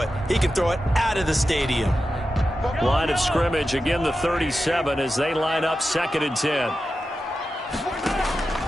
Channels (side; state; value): both; normal; correlation 0.91